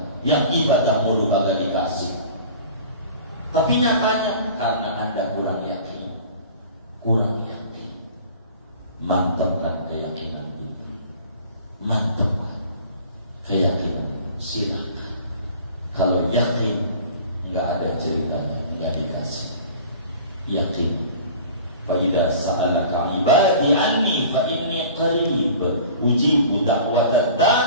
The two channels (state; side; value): inverted; both; correlation -0.44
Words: yang ibadah mulu kagak dikasih? Tapi nyatanya karena Anda kurang yakin. Mantapkan keyakinan itu. Mantapkan keyakinan. Silakan. Kalau yakin nggak ada ceritanya, nggak dikasih. Yakin. Fa'idha sa'alaka ibadi anni fa'inni qarib ujibu da'wata